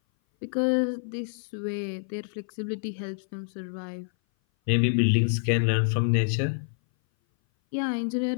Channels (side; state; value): right; silent; 58 dB below the other